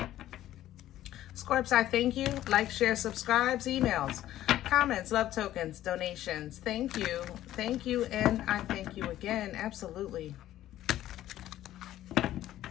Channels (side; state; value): right; quieter; 13.4 dB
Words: Scorps, I thank you. Like, share, subscribes, emails, comments, love tokens, donations. Thank you. Thank you, and I thank you again. Absolutely.